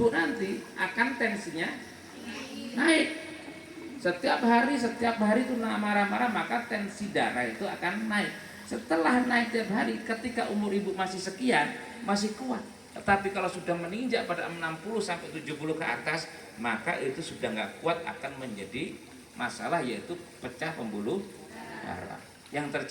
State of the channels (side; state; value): both; identical; correlation 1.00